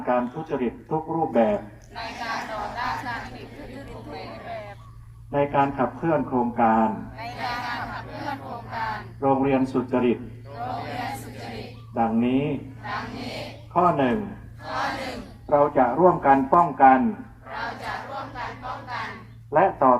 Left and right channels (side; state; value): both; identical; correlation 1.00